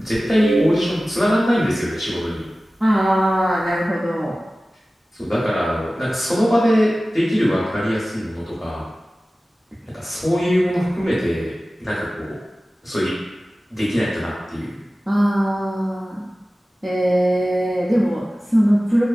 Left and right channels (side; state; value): both; normal; correlation 0.96